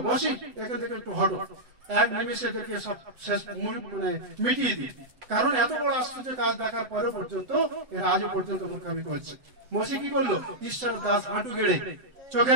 মসি এখান থেকে একটু হটো, এক নিমিষে এদেরকে সব শেষ মানে মিটিয়ে দিই। কারণ এত বড় আশ্চর্য কাজ দেখার পরে পর্যন্ত এরা আজও পর্যন্ত মূর্খামি করছে। মসি কি করলো? ঈশ্বরের দাস হাঁটু গেড়ে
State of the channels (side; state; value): left; late; 7.8 ms